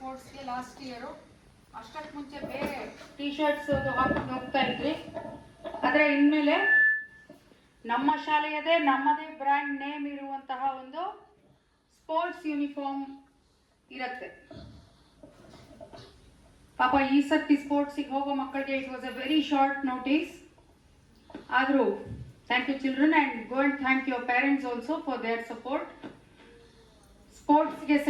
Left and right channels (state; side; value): identical; both; correlation 1.00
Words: last year. ಅಷ್ಟಕ್ಕೆ ಮುಂಚೆ ಬೇರೆ T shirts ಹಾಕೊಂಡು ಹೋಗ್ತಾ ಇದ್ವಿ. ಆದರೆ ಇನ್ಮೇಲೆ ನಮ್ಮ ಶಾಲೆಯದೇ ನಮ್ಮದೇ ಬ್ರ್ಯಾಂಡ್ ನೇಮ್ ಇರುವಂತಹ ಒಂದು ಸ್ಪೋರ್ಟ್ಸ್ ಯೂನಿಫಾರ್ಮ್ ಇರುತ್ತೆ. ಪಾಪ ಈ ಸರ್ತಿ ಸ್ಪೋರ್ಟ್ಸಿಗೆ ಹೋಗೋ ಮಕ್ಕಳಿಗೆ it was a very short notice. ಆದರೂ thank you children and go and thank your parents also for their support. ಸ್ಪೋರ್ಟ್ಸ್ಗೆ